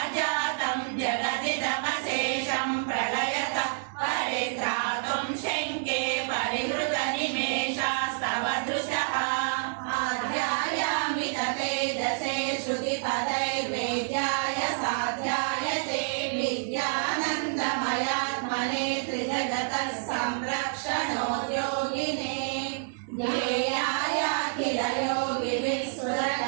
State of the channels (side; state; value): left; silent; digital silence